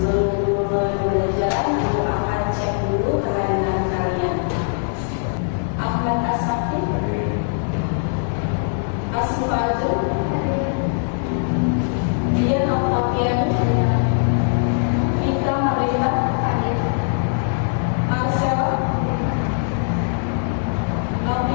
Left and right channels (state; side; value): silent; right; digital silence